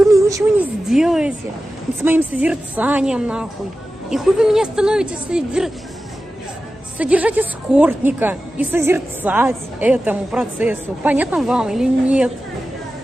мне ничего не сделаете с моим созерцанием, нахуй. И хуй вы меня становитесь содержать эскортника и созерцать этому процессу. Понятно вам или нет?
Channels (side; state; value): both; normal; correlation 0.94